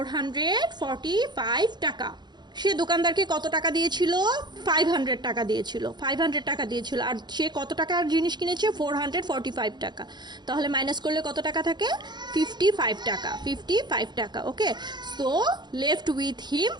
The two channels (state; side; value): late; left; 0.21 ms